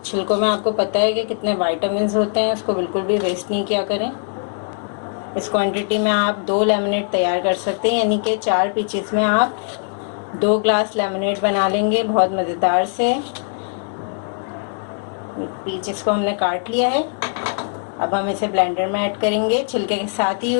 छिलकों में आपको पता है कि कितने विटामिन्स होते हैं, उसको बिल्कुल भी वेस्ट नहीं किया करें। इस क्वांटिटी में आप 2 लेमनेड तैयार कर सकते हैं, यानी कि 4 पीचेस में आप 2 ग्लास लेमनेड बना लेंगे बहुत मज़ेदार से। पीचेस को हमने काट लिया है, अब हम इसे ब्लेंडर में ऐड करेंगे। छिलके के साथ ही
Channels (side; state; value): right; silent; 62 dB below the other